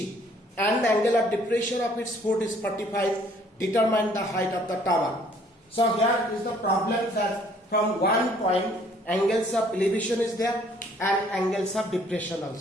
and the angle of depression of its foot is 45. Determine the height of the tower. So here is the problem that from one point angles of elevation is there and angles of depression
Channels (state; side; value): normal; both; correlation 0.60